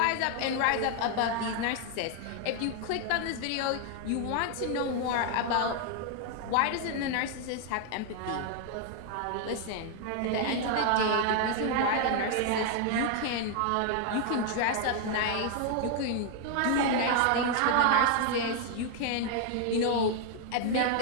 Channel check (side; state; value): both; different; correlation 0.00